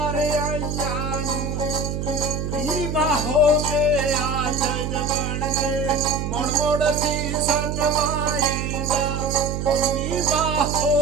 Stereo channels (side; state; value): right; noise; hum, 3 dB below the sound